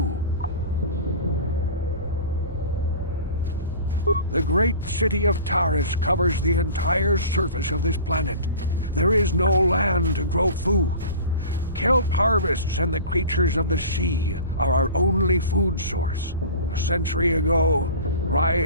The great city of Taris covers the entire surface of this planet. There is no land to grow food. Kelp harvests and the creatures of the sea are our only food source. A century ago,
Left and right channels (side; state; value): both; inverted; correlation -0.38